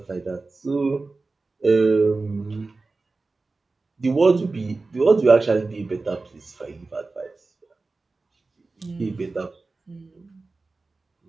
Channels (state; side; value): quieter; left; 3.6 dB